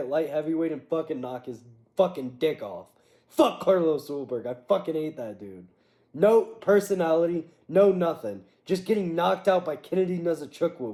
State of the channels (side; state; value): both; identical; correlation 1.00